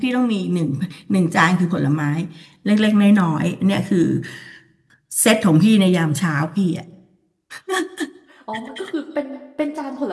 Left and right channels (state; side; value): identical; both; correlation 1.00